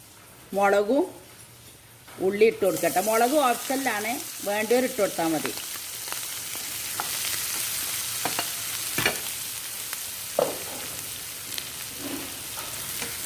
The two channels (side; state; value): both; identical; correlation 1.00